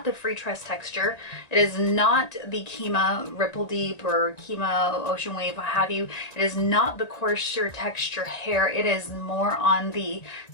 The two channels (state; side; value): late; right; 1.9 ms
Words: the free tress texture. It is not the Kima Ripple Deep or Kima Ocean Wave, what have you. It is not the coarser texture hair. It is more on the